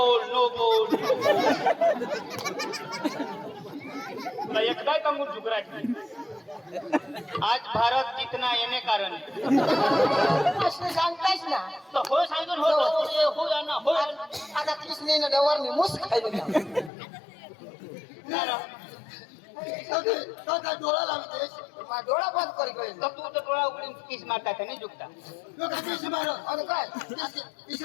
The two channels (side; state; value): right; drops out; at 16.9 s